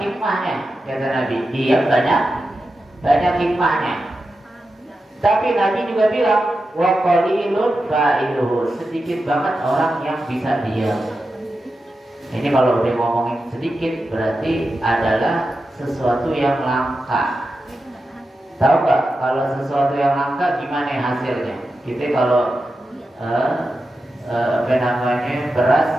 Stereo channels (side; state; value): both; normal; correlation 0.90